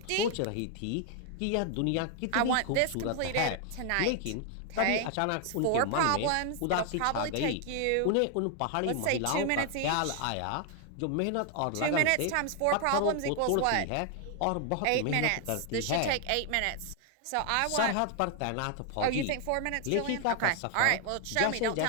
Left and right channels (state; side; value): different; both; correlation 0.00